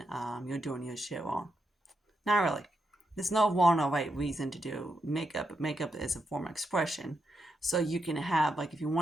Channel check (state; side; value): normal; both; correlation 0.83